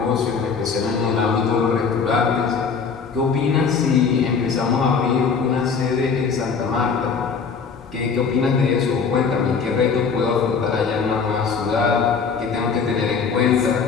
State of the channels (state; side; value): quieter; right; 5.6 dB